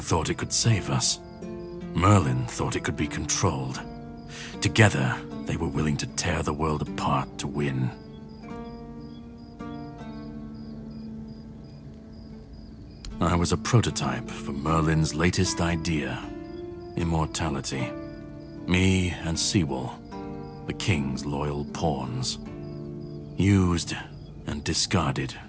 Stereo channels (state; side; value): identical; both; correlation 1.00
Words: it could save us. Merlin thought it could be controlled. Together, they were willing to tear the world apart to win. I was a prototype for Merlin's latest idea, immortality. Me and Sewell, the king's loyal pawns. Used and discarded